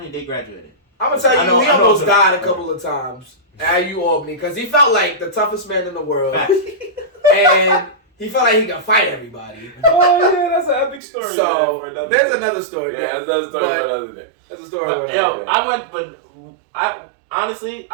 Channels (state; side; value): drops out; left; at 11.0 s